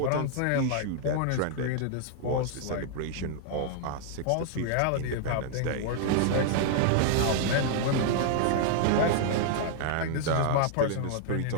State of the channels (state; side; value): different; both; correlation -0.01